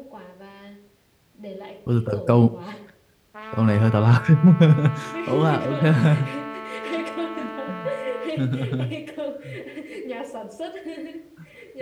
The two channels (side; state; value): both; identical; correlation 1.00